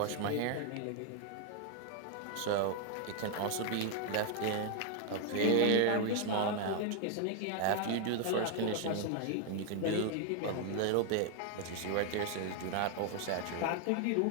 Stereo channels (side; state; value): both; different; correlation 0.00